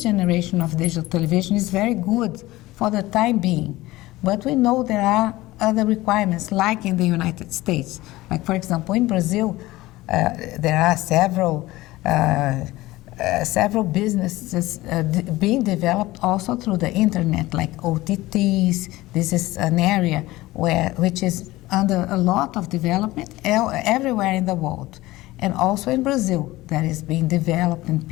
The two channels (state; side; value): quieter; right; 18.4 dB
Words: generation of digital television is very good for the time being. But we know there are other requirements, like in the United States. Like, for example, in Brazil, there are several businesses being developed also through the internet, like OTTs. This is an area which is under a lot of development everywhere in the world. And also in Brazil, that is being developed, and